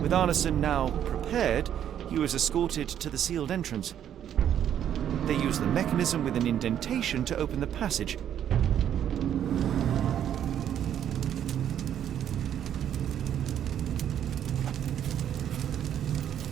Arneson now prepared, he was escorted to the sealed entrance. They used the mechanism with an indentation to open the passage.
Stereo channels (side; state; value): left; quieter; 9.9 dB